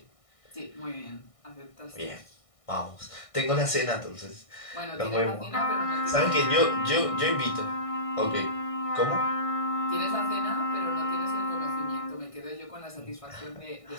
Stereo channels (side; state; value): right; late; 1.6 ms